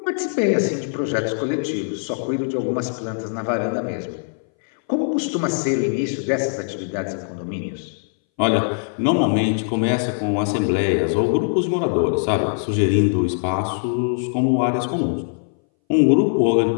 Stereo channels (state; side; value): silent; right; 62 dB below the other